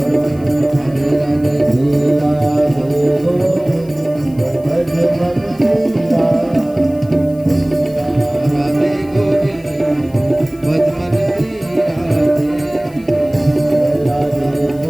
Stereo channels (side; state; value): left; noise; hiss, 26 dB below the sound